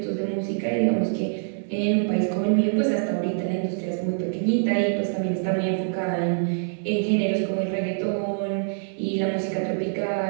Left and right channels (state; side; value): silent; left; 62 dB below the other